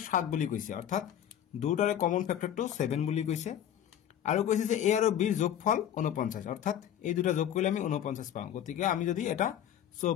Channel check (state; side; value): quieter; right; 10.3 dB